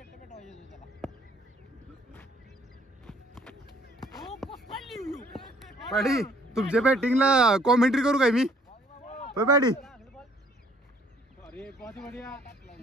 पॅडी तुमच्या बॅटिंगला कॉमेंट्री करू काय मी? होय पॅडी अरे बहुत बढ़िया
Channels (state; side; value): normal; both; correlation 0.60